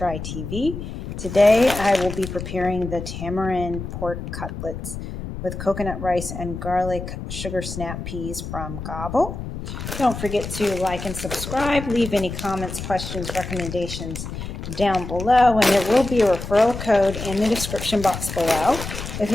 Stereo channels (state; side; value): noise; left; rumble, 8 dB below the sound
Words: TV. Today I will be preparing the tamarind pork cutlets with coconut rice and garlic sugar snap peas from Gobble. Don't forget to like and subscribe. Leave any comments, questions, recommendations down below, and there will be a referral code in the description box below if